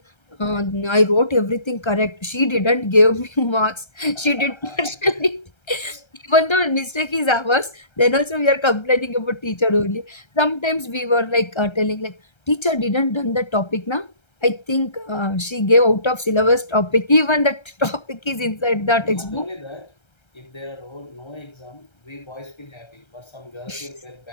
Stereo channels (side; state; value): right; late; 1.3 ms